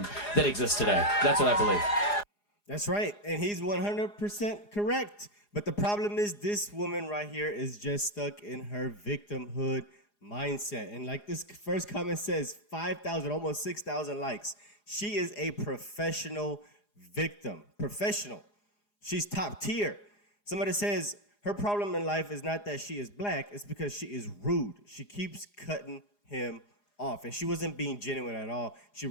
that exists today. That's what I believe. That's right. And he's 100% correct. But the problem is this woman right here is just stuck in her victimhood mindset. And like this first comment says, 5,000, almost 6,000 likes. She is a professional victim. Professional. She's top tier. Somebody says her problem in life is not that she is black, it's because she is rude. She keeps cutting him off. And she wasn't being genuine at all. She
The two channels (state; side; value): late; right; 4.9 ms